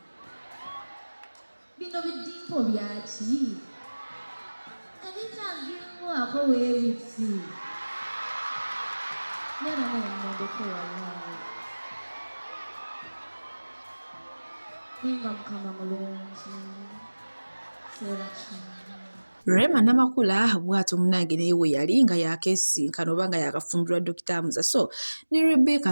bino bidimpo byaki ebitagirwako weebiti Rema Namakula bw'atyo munnange naye we yali nga yakesinkana oba nga yakafumbirwa Dokita Muza. So ne Rebecca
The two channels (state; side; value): inverted; both; correlation -1.00